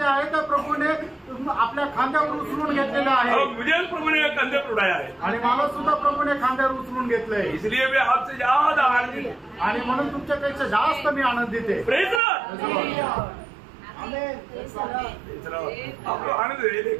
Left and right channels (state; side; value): drops out; left; at 12.2 s